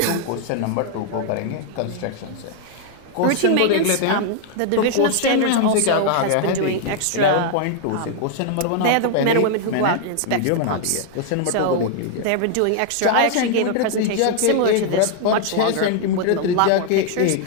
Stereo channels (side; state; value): both; different; correlation 0.00